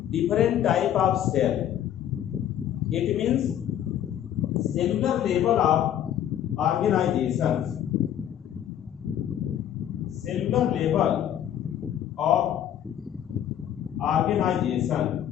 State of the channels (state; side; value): quieter; right; 10.6 dB